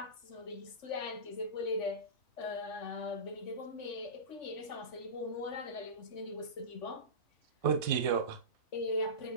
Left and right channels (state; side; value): late; right; 3.5 ms